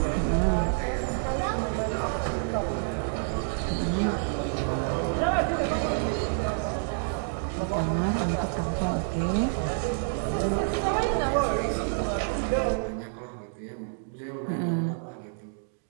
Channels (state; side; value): silent; left; digital silence